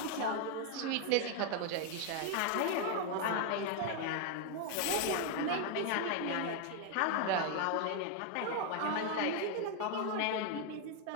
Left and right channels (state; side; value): different; both; correlation 0.01